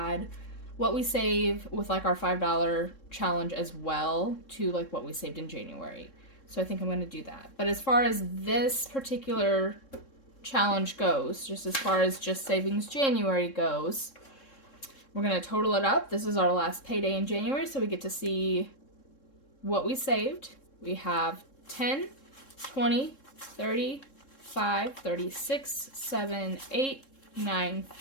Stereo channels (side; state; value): right; late; 3.7 ms